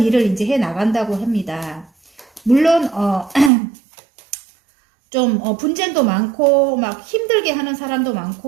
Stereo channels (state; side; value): drops out; left; at 3.5 s